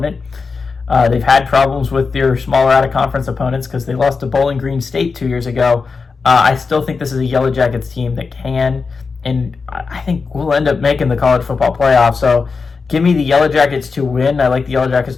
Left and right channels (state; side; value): quieter; right; 4.7 dB